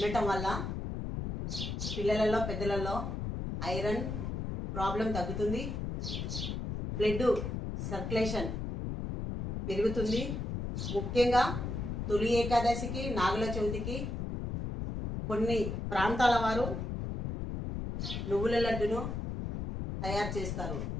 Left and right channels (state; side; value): noise; left; rumble, 4 dB below the sound